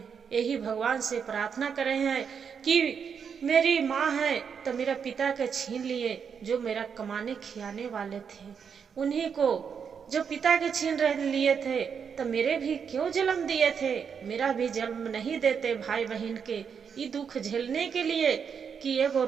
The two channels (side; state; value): left; quieter; 6.8 dB